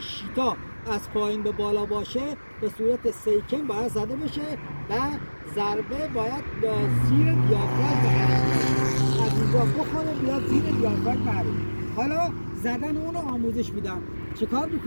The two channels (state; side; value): inverted; both; correlation -1.00